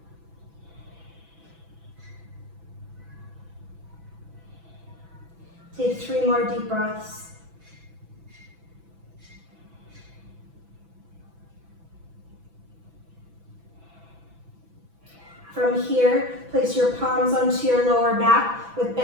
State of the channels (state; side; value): late; left; 6.0 ms